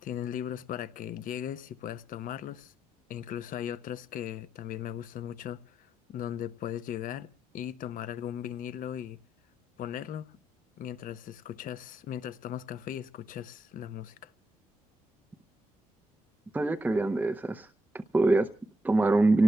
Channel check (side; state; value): both; normal; correlation 0.83